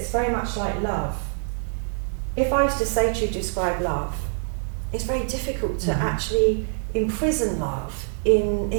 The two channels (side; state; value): left; silent; 62 dB below the other